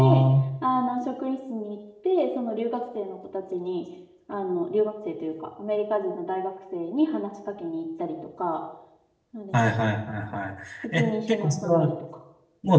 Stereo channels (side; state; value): both; identical; correlation 1.00